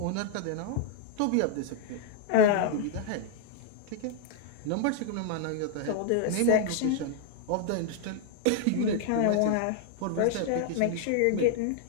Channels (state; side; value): different; both; correlation 0.00